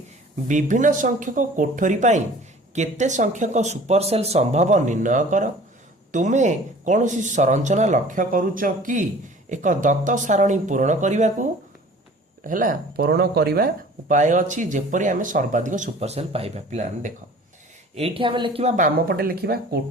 ବିଭିନ୍ନ ସଂଖ୍ୟକ କୋଠରୀ ପାଇଁ କେତେ ସଂଖ୍ୟକ ସୁପର ସେଲ୍ ସମ୍ଭବ ନିର୍ଣ୍ଣୟ କର। ତୁମେ କୌଣସି ସଂରଚନା ଲକ୍ଷ୍ୟ କରୁଛ କି ଏକ ଦତ୍ତ ସାରଣୀ ପୂରଣ କରିବାକୁ? ହେଲା, ପୂରଣ କରିବା ଉପାୟ ଅଛି ଯେପରି ଆମେ ସର୍ବାଧିକ ସୁପର ସେଲ୍ ପାଇବା। ପିଲାମାନେ ଦେଖ, ଏଇଠି ଆମେ ଲେଖିବା ବାମ ପଟେ ଲେଖିବା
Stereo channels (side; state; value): both; normal; correlation 0.47